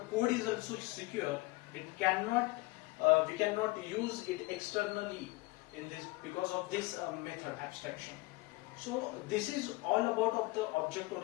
code is also secure. It cannot, we cannot use it externally in this because of this method abstraction. So this is all about of the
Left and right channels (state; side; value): quieter; right; 22.5 dB